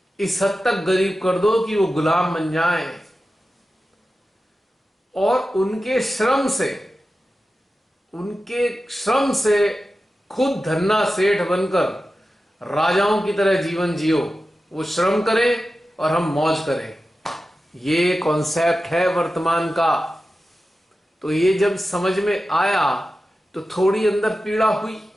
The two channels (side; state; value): both; normal; correlation 0.93